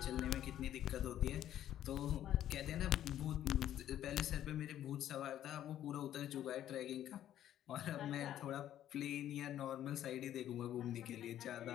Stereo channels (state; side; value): quieter; right; 11.7 dB